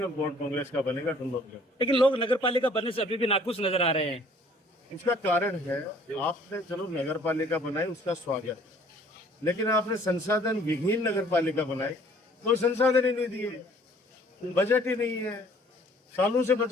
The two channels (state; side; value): normal; both; correlation 0.56